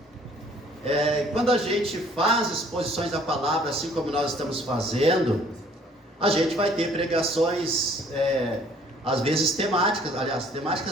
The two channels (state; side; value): normal; both; correlation 0.58